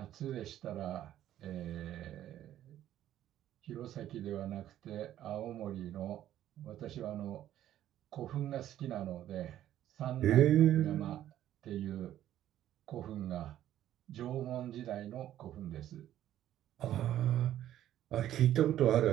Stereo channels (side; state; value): left; quieter; 12.2 dB